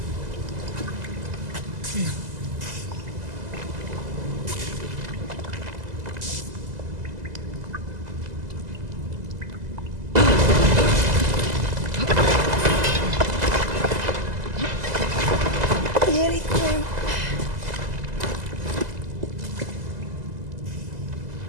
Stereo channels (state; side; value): late; left; 2.0 ms